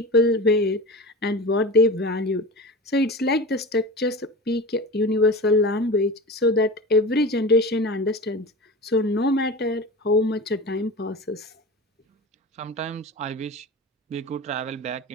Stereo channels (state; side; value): normal; both; correlation 0.31